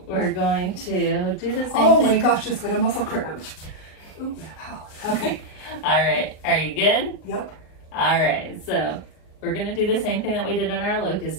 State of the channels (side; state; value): right; late; 38 ms